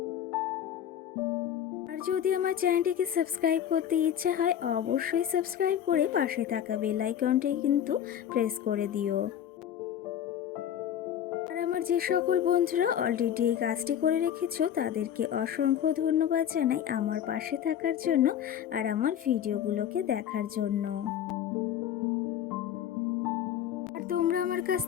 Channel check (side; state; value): right; quieter; 9.8 dB